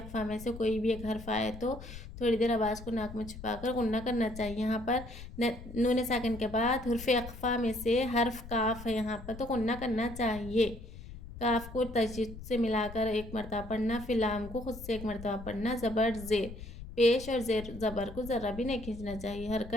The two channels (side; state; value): left; noise; rumble, 13 dB below the sound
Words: में से कोई भी एक हर्फ आए तो थोड़ी देर आवाज़ को नाक में छुपाकर गुन्ना करना चाहिए। यहाँ पर नून साकिन के बाद हुर्फ़ अक़फ़ा में से हर्फ काफ है यहाँ पर, तो गुन्ना करना चाहिए। काफ को तशदीद से मिलाकर एक मरतबा पढ़ना, फिर लाम को खुद से एक मरतबा पढ़ना। ज़बर ज़ेर, पेश और ज़ेर ज़बर को ज़रा भी नहीं खींचना चाहिए।